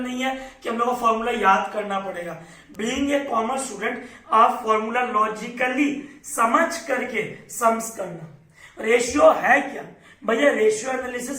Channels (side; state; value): both; identical; correlation 1.00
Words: है कि हम लोग को फॉर्मूला याद करना पड़ेगा। बीइंग ए कॉमर्स स्टूडेंट आप फॉर्मूला लॉजिकली समझ करके सम्स करना। रेशियो है क्या भैया? रेशियो